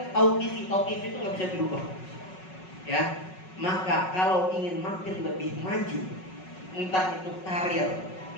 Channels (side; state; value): right; late; 5.4 ms